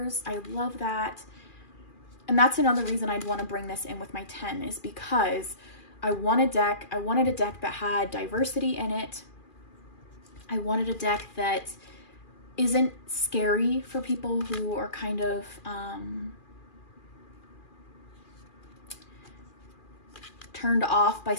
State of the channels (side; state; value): right; late; 2.4 ms